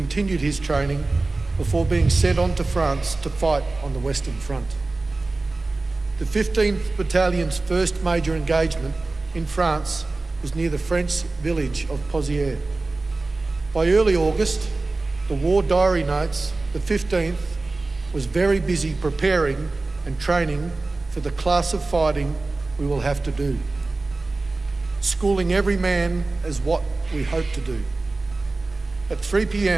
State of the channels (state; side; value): quieter; left; 3.3 dB